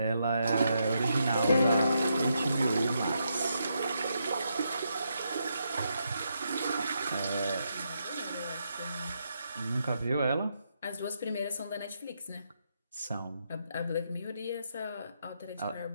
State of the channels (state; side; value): inverted; both; correlation -0.80